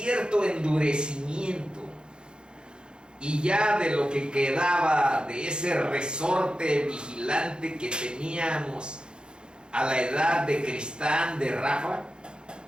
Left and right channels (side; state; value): left; late; 0.050 ms